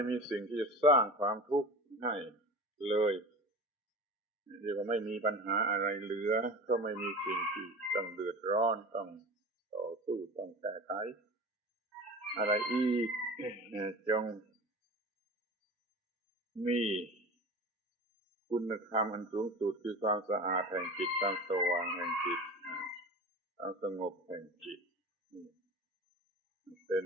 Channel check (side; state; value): both; normal; correlation 0.34